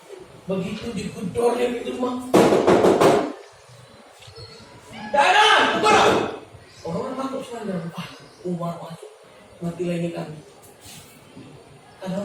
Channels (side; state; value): both; identical; correlation 1.00